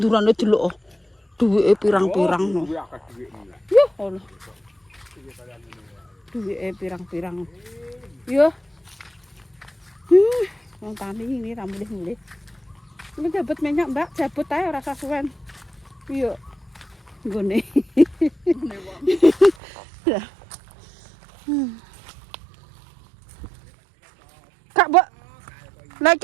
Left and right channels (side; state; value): left; drops out; at 19.6 s